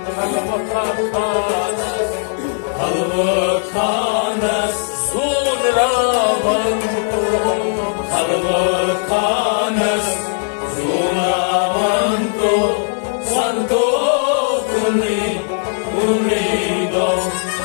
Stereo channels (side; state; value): right; silent; digital silence